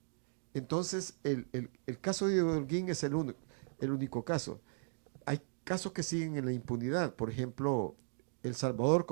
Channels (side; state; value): left; silent; digital silence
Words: Entonces, el caso de Holguín es el único caso. Hay casos que siguen en la impunidad. Por ejemplo, El Salvador,